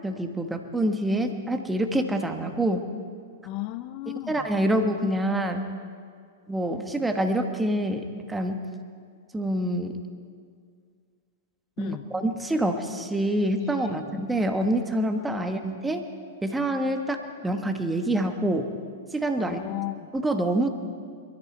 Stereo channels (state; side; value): normal; both; correlation 0.62